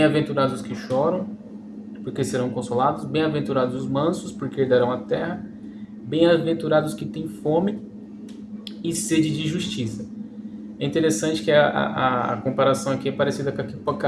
os que choram, porque serão consolados. Bem-aventurados os mansos, porque herdarão a terra. Bem-aventurados os que têm fome e sede de justiça. É interessante que a comparação aqui é parecida com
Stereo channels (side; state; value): both; identical; correlation 1.00